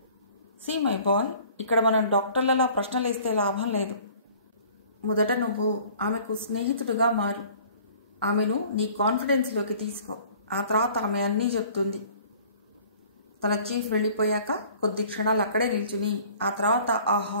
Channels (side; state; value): both; inverted; correlation -0.51